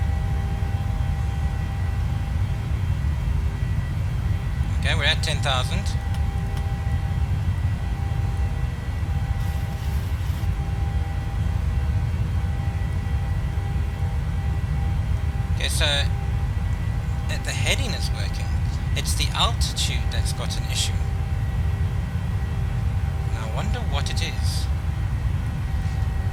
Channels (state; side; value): identical; both; correlation 1.00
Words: Okay, we're at 10,000. Okay, so the heading is working. It's the altitude that's got an issue. And I wonder what it is.